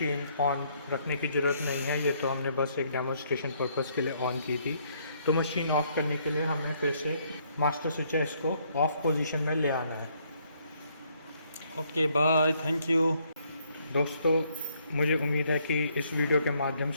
ऑन रखने की ज़रूरत नहीं है, ये तो हमने बस एक डेमोन्स्ट्रेशन पर्पज़ के लिए ऑन की थी। तो मशीन ऑफ़ करने के लिए हमें फिर से मास्टर स्विच है इसको ऑफ़ पोजीशन में ले आना है। Okay bye, thank you. दोस्तों मुझे उम्मीद है कि इस वीडियो के माध्यम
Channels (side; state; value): both; inverted; correlation -0.69